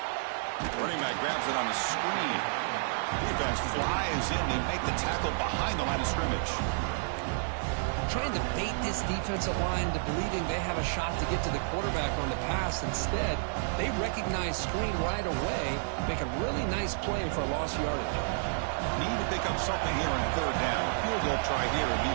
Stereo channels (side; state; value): left; silent; digital silence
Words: Running back grabs it on the screen. Defense flies in. They make the tackle behind the line of scrimmage. Trying to bait this defensive line to believing they have a shot to get to the quarterback on the pass. Instead, they recognize screen right away, make a really nice play for a lost yardage. Need to pick up something here on third down. Field goal try here would be